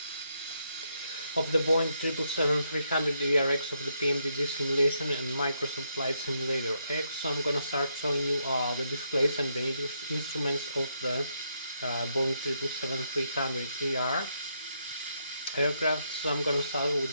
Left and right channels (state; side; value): inverted; both; correlation -0.77